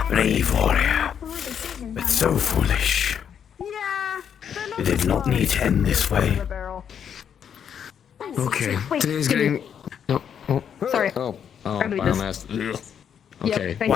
Brave warrior, but so foolish. Yeah. It did not need to end this way. The barrel. Okay. Wait, Today's give me- getting. No. Oh. Sorry. Oh. Grab me this. Biomass. Okay. thank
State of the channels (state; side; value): quieter; right; 8.2 dB